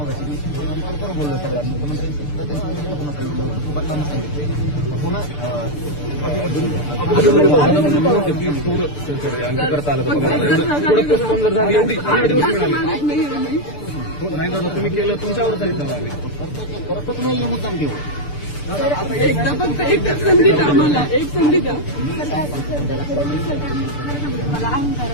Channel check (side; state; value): right; late; 6.8 ms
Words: नाही दादा तुम्ही केलं तुमच्यावर करतच नाही मुद्दाम घेऊ एकदा फक्त एक संधी द्या आम्हाला एक संधी द्या